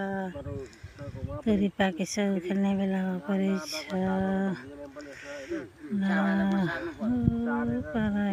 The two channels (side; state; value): both; identical; correlation 1.00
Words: तोरी पाकिसक्यो खेल्ने बेला परेछ। पर